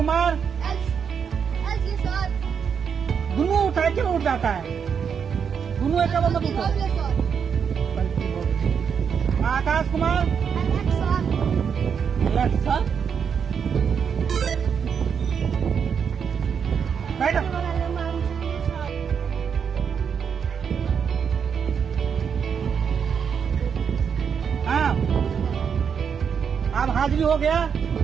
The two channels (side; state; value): left; quieter; 7.0 dB